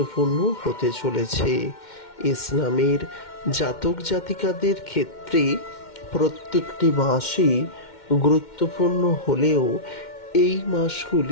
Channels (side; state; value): right; late; 2.1 ms